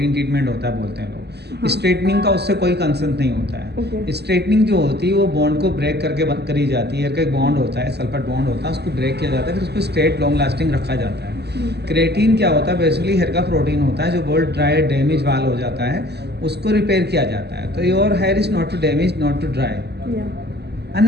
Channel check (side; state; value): left; late; 0.48 ms